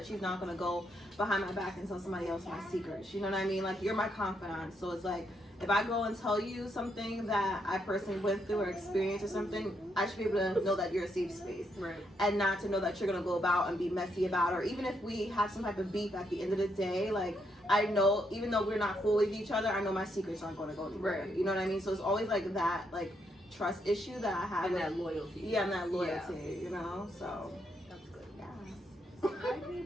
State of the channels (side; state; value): both; normal; correlation 0.78